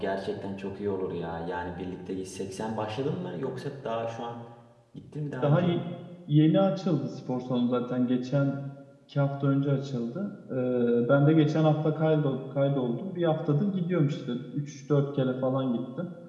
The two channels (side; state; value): both; identical; correlation 1.00